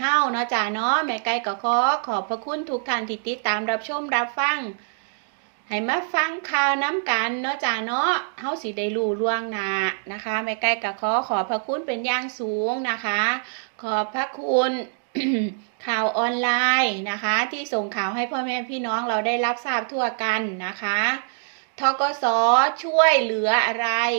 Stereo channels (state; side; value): silent; left; digital silence